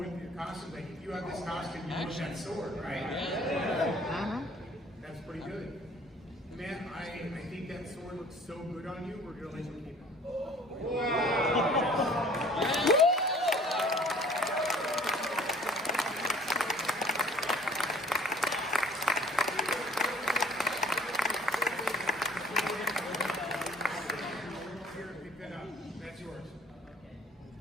your costume? Like, if you have this costume, you want that sword, right? Yeah. That's pretty good. Man, I think that sword looks so good on you, we're going to let you keep it. Here, pick that up. That's yours.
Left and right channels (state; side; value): normal; both; correlation 0.52